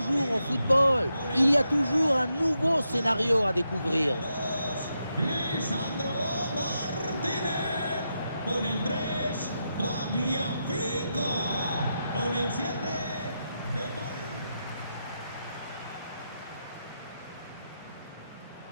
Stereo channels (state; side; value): inverted; both; correlation -0.85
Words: au football. Il y a toujours un nouveau scénario à découvrir. Lisandro Martínez, con el 3, Tagliafico, con el 7, De Paul.